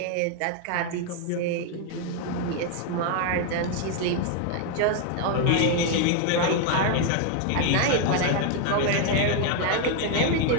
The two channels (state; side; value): different; both; correlation 0.01